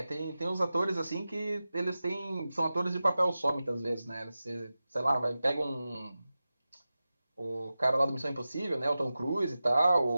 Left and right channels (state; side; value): inverted; both; correlation -0.94